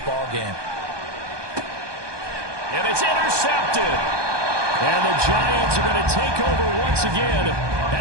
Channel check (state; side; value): late; left; 1.2 ms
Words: game. And it's intercepted. And the Giants are going to take over once again